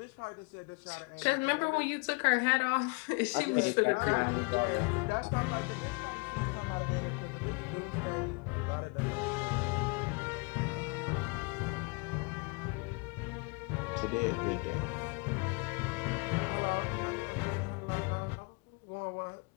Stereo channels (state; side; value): quieter; right; 31.0 dB